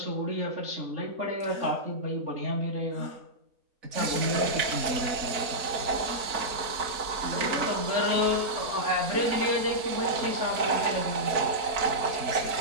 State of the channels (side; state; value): left; late; 4.4 ms